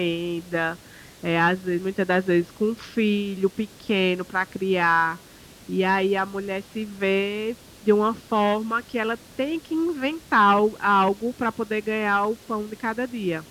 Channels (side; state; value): both; identical; correlation 1.00